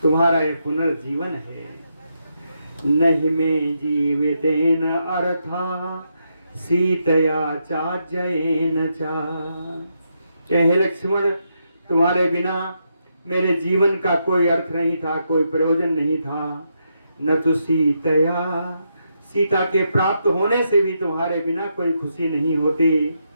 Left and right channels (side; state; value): both; inverted; correlation -0.81